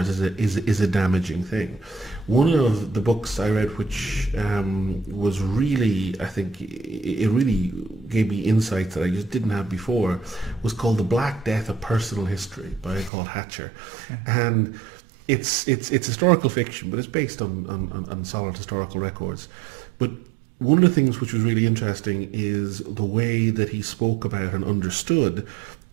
is a damaging thing. One of the books I read which was really, I think, it really gave me insights that I just didn't have before, was called The Black Death of Personal History by Paul Hatcher. Okay. And it's historical fiction, but it's based on solid historical records. But one of the things which was really interesting is the way that he spoke about and understood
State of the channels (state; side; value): drops out; left; at 13.1 s